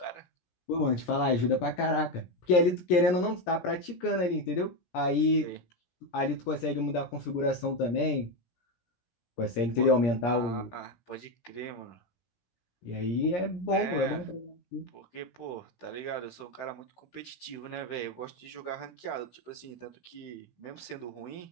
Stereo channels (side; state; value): right; late; 17 ms